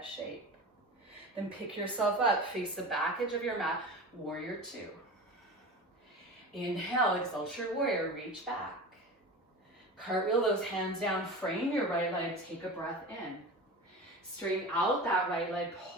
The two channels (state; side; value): normal; both; correlation 0.31